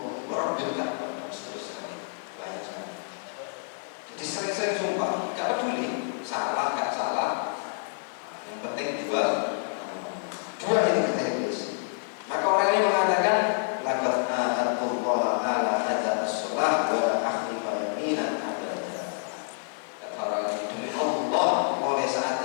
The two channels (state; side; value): silent; right; digital silence